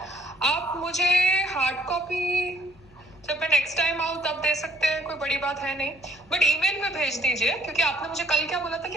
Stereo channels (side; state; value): left; noise; hum, 27 dB below the sound